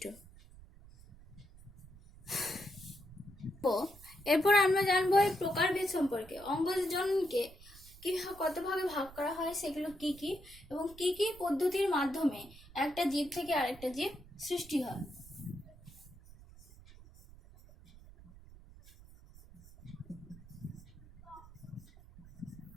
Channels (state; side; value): noise; right; rumble, 20 dB below the sound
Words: এরপর আমরা জানবো এই প্রকারভেদ সম্পর্কে। অঙ্গজ জননকে কি কত ভাগে ভাগ করা হয়, সেগুলো কি কি, এবং কি কি পদ্ধতির মাধ্যমে একটা জীব থেকে আরেকটা জীব সৃষ্টি হয়।